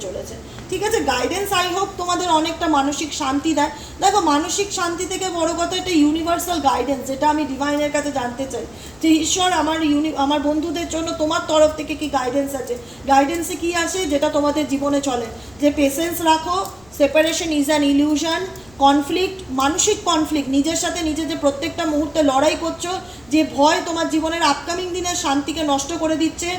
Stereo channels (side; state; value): left; noise; rumble, 27 dB below the sound